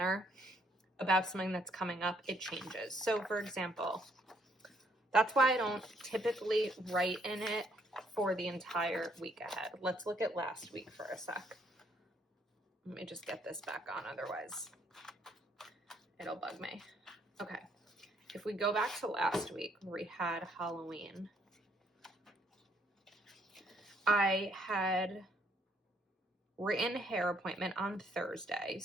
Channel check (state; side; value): normal; both; correlation 0.69